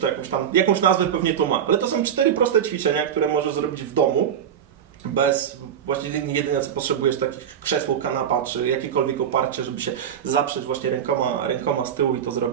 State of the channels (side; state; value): left; quieter; 8.8 dB